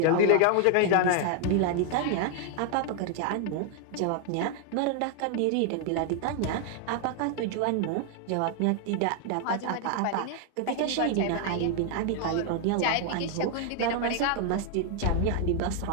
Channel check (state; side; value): different; both; correlation 0.00